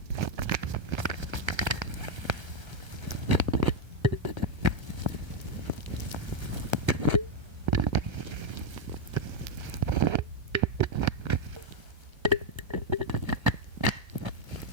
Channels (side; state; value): left; late; 1.3 ms